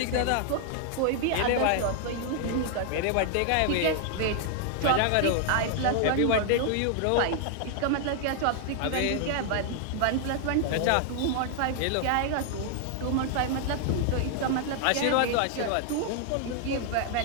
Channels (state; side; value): different; both; correlation 0.00